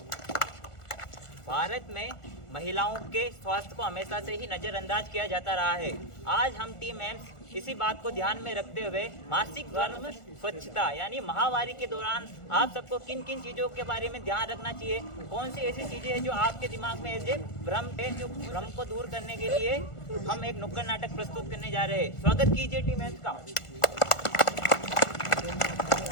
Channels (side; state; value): right; late; 1.4 ms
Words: भारत में महिलाओं के स्वास्थ्य को हमेशा से ही नजरअंदाज किया जाता रहा है। आज हम टीम एम्स इसी बात को ध्यान में रखते हुए मासिक धर्म स्वच्छता यानी महावारी के दौरान आप सबको किन किन चीजों के बारे में ध्यान रखना चाहिए, कौन सी ऐसी चीजें हैं जो आपके दिमाग में ऐसे भ्रम है, जो भ्रम को दूर करने के लिए हम एक नुक्कड़ नाटक प्रस्तुत करने जा रहे हैं। स्वागत कीजिए टीम एम्स का।